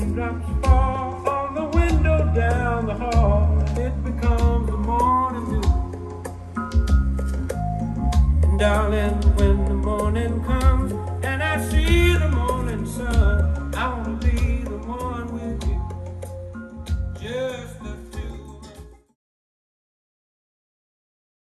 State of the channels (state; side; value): identical; both; correlation 1.00